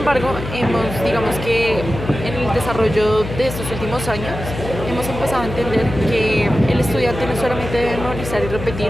digamos que en el desarrollo de estos últimos años, hemos empezado a entender que el estudiante no solamente debe memorizar y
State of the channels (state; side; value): noise; left; hum, 8 dB below the sound